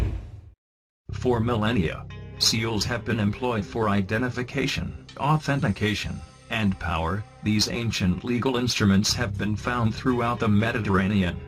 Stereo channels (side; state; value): both; identical; correlation 1.00